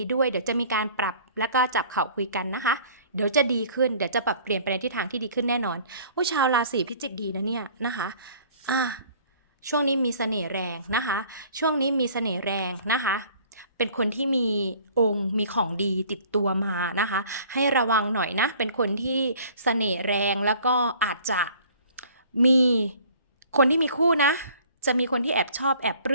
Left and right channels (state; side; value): inverted; both; correlation -0.52